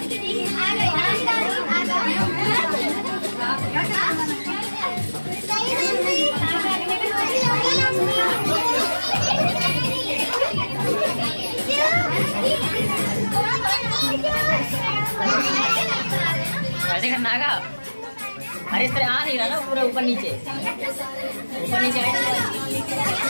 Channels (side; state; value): both; inverted; correlation -1.00